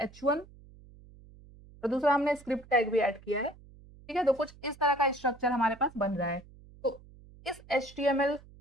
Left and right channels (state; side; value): noise; right; hum, 22 dB below the sound